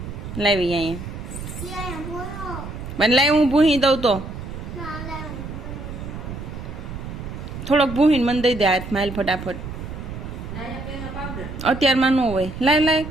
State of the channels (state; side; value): noise; right; rumble, 9 dB below the sound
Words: લાવી અહીંયા મને લાવી, હું ભૂહી દઉં તો થોડોક ભૂહીને મને દઈ દે હાથમાં, હાલ ફટાફટ. અત્યારમાં ન હોય, લાય લાય.